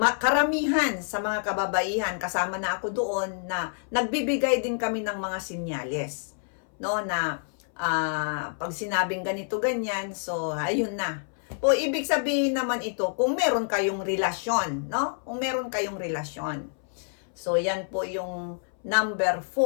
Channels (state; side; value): silent; right; 60 dB below the other